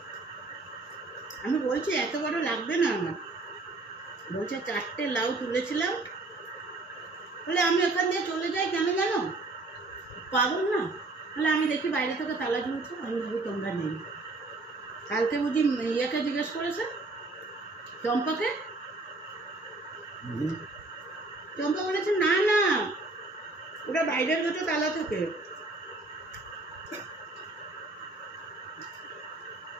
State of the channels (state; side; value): quieter; left; 3.2 dB